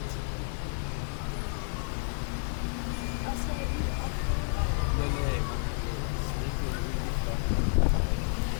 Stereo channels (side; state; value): right; silent; 57 dB below the other